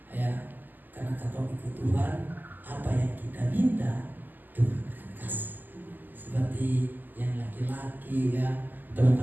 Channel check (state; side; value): late; left; 0.087 ms